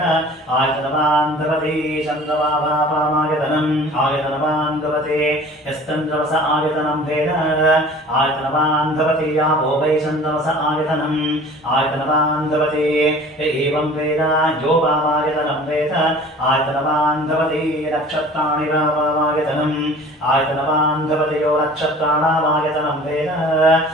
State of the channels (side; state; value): both; normal; correlation 0.45